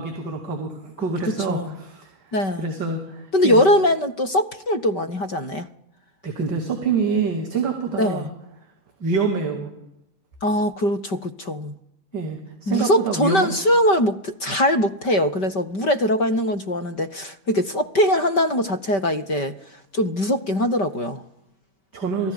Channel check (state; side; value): late; right; 5.2 ms